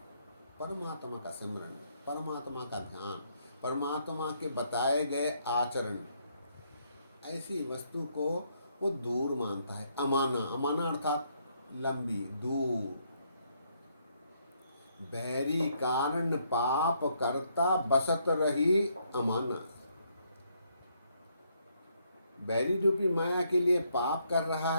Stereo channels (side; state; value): both; inverted; correlation -0.73